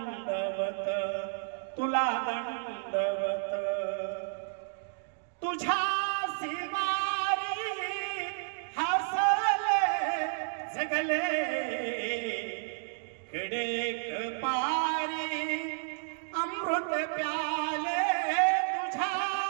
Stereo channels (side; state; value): left; silent; digital silence